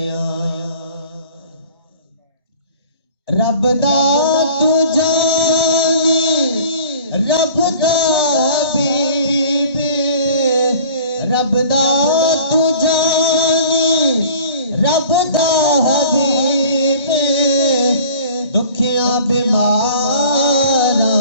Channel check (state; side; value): inverted; both; correlation -0.47